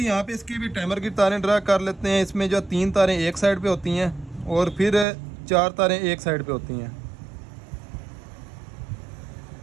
यहाँ पे इसकी भी टाइमर की तारें ड्रा कर लेते हैं। इसमें जो 3 तारें एक साइड पे होती हैं और फिर 4 तारें एक साइड पे होती हैं।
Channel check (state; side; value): drops out; left; at 5.1 s